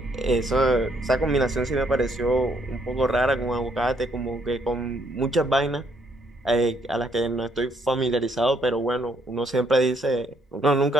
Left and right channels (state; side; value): normal; both; correlation 0.70